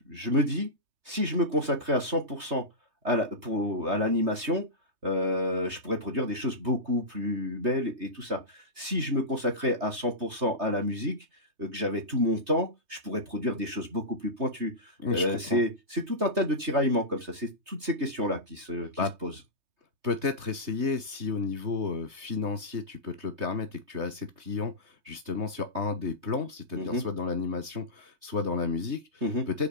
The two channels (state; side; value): late; left; 3.2 ms